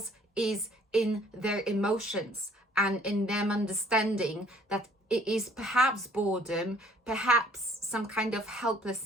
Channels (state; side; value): normal; both; correlation 0.58